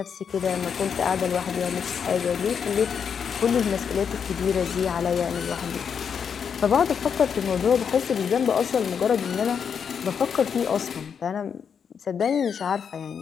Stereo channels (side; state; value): right; quieter; 7.0 dB